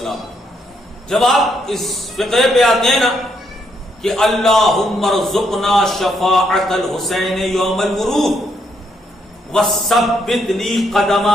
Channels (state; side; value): normal; both; correlation 0.75